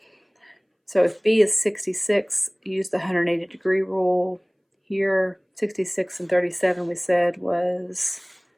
so if B is 66, use the 180 degree rule. Here, 66 and 37 we said was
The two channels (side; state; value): both; identical; correlation 1.00